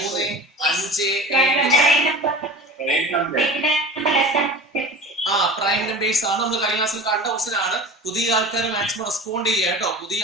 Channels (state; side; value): normal; both; correlation 0.37